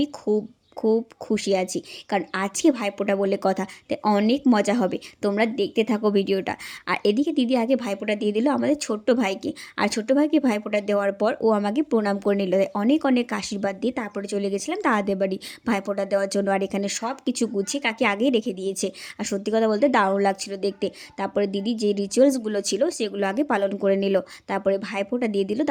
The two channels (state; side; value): identical; both; correlation 1.00